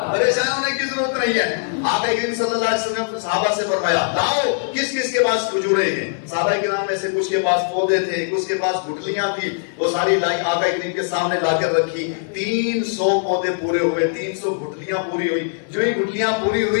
پریشان ہونے کی ضرورت نہیں ہے. آقا کریم صلی اللہ علیہ وسلم نے صحابہ سے فرمایا لاؤ کس کس کے پاس کھجوریں ہیں. صحابہ کرام میں سے کچھ کے پاس پودے تھے, کچھ کے پاس گٹھلیاں تھی, وہ ساری لائی آقا کریم کے سامنے لا کر رکھی. 300 پودے پورے ہوئے, 300 گٹھلیاں پوری ہوئی. جو ہی گٹھلیاں پوری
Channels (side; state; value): right; silent; digital silence